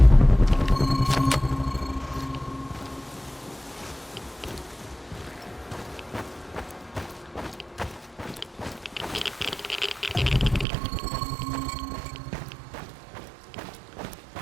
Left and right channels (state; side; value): drops out; left; at 10.7 s